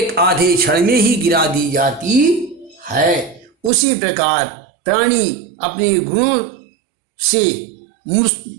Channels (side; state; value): left; drops out; at 3.7 s